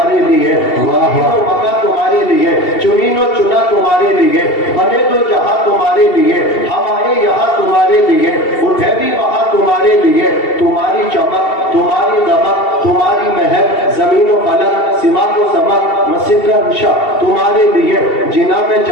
لیے, زمین و مکہ تمہارے لیے, چنین و چنا تمہارے لیے, بنے دو جہاں تمہارے لیے, ہم آئے یہاں تمہارے لیے, اٹھے بھی وہاں تمہارے لیے. تمہاری چمک, تمہاری دمک, تمہاری مہک, زمین و فلک, سماق و سمک, مسجد کا نشا تمہارے لیے. جنا میں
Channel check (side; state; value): right; late; 2.7 ms